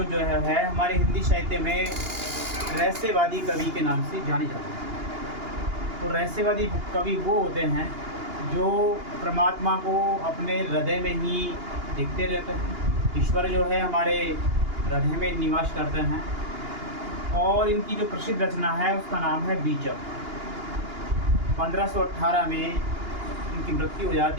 है हमारे हिंदी साहित्य में रहस्यवादी कवि के नाम से जाने जाते हैं। तो रहस्यवादी कवि वो होते हैं जो परमात्मा को अपने हृदय में ही देखते रहते हैं। ईश्वर जो है हमारे हृदय में निवास करते हैं। और इनकी जो प्रसिद्ध रचना है उसका नाम है बीजक। 1518 में इनकी मृत्यु हो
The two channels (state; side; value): late; left; 2.8 ms